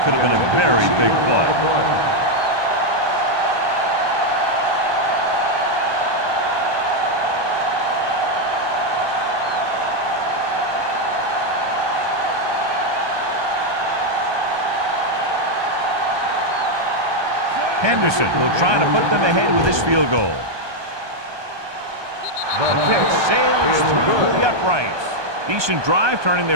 could have been a very big play. Henderson will try to put them ahead with his field goal. The kick sails through the uprights. Decent drive, turning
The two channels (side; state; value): left; late; 1.2 ms